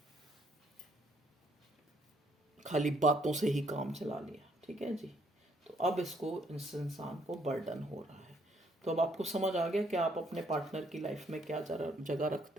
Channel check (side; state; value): both; normal; correlation 0.68